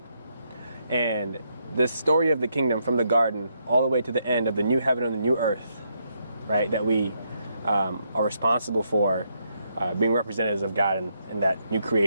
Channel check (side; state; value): both; inverted; correlation -0.77